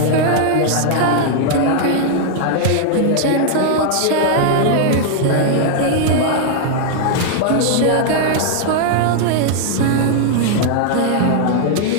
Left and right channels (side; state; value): both; different; correlation -0.01